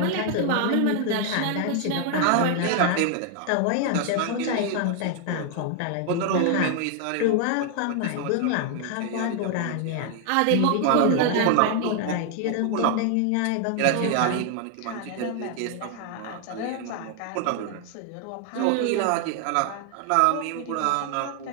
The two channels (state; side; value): different; both; correlation 0.00